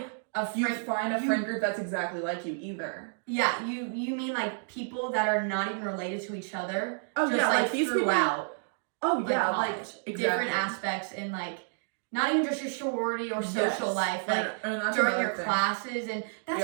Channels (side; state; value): left; silent; digital silence